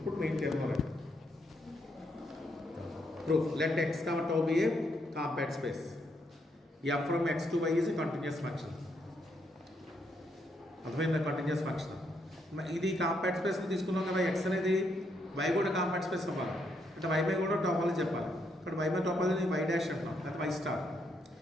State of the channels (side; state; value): both; normal; correlation 0.76